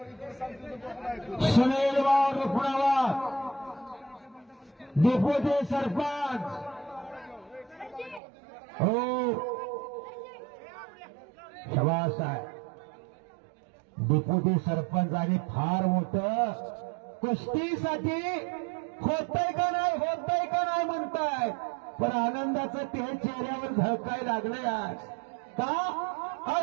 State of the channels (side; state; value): left; drops out; at 8.2 s